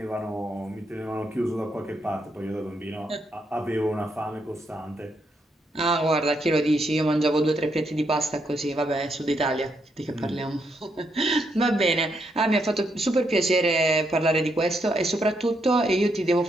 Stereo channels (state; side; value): normal; both; correlation 0.78